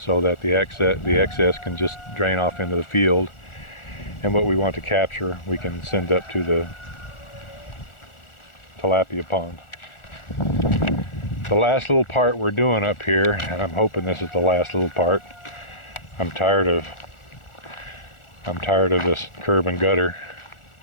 that the excess can just drain off into the field, and what we want to capture we can send up to the tilapia pond. The last little part we're doing up here, and I'm hoping this is the last little part. I'm tired of this curb and gutter.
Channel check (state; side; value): late; right; 1.4 ms